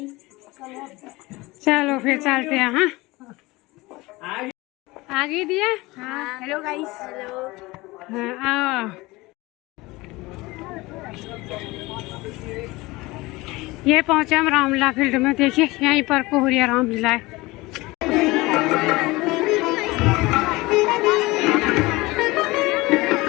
चलो फिर चलते हैं। हाँ आगे दिया। हाँ हेलो गाइस। हेलो। हाँ आओ। ये पहुंचे हम रामलीला फील्ड में। देखिए यहीं पर कोहरिया रामलीला है।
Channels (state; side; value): quieter; right; 21.5 dB